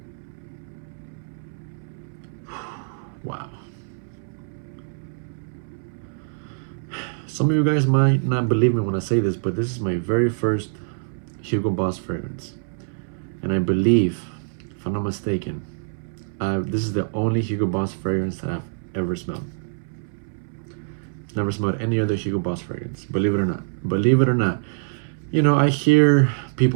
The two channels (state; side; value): silent; left; 62 dB below the other